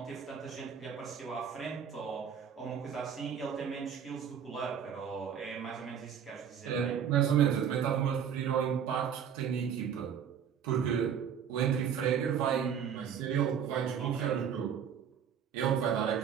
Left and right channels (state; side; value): quieter; left; 8.1 dB